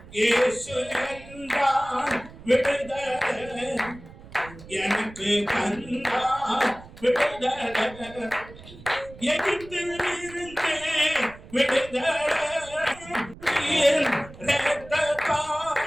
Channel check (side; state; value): right; noise; rumble, 18 dB below the sound